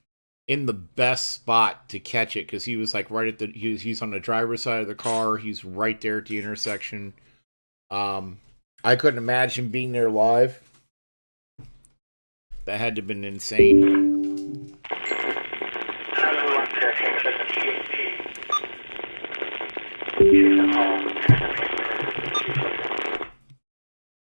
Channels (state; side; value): inverted; both; correlation -1.00